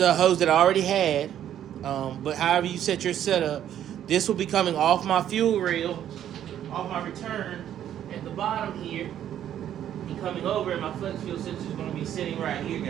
hose that I already had. But however you set your setup, this will be coming off my fuel rail, off my return at the bottom here, and coming over, and my flex fuel sensor is going to be sitting right here,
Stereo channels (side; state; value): left; quieter; 10.7 dB